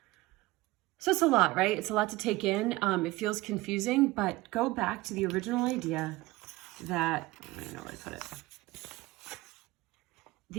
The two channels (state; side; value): quieter; left; 19.9 dB